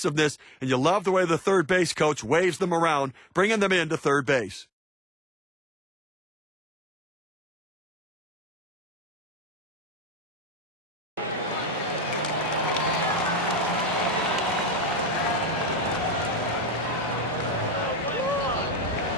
And you love the way the third base coach waves them around, bringing them into third base.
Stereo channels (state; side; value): normal; both; correlation 0.52